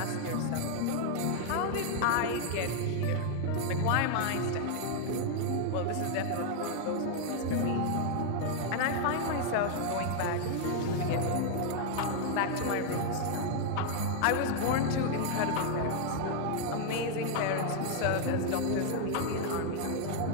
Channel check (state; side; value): different; both; correlation 0.00